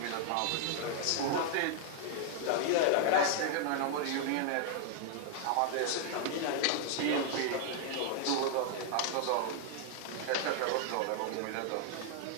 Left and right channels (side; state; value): both; different; correlation 0.00